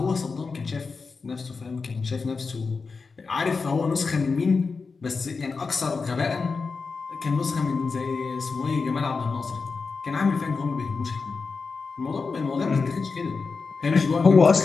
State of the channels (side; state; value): right; quieter; 4.6 dB